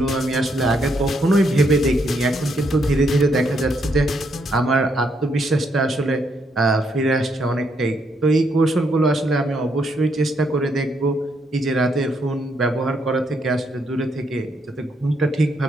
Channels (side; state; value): both; normal; correlation 0.75